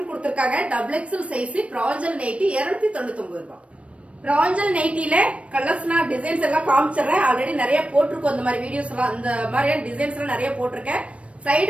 கொடுத்திருக்காங்க. Double XL size. Pranjal nighty 299 ரூபாய். பிராஞ்சல் நைட்டில கலர்ஸ்னா டிசைன்ஸ் எல்லாம் காமிச்சிடுறேன். ஆல்ரெடி நிறைய போட்டிருக்கோம் இந்த மாதிரி வீடியோஸ் எல்லாம். இந்த மாதிரியான டிசைன்ஸ் எல்லாம் நிறைய போட்டிருக்கேன்.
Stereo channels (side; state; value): left; late; 0.062 ms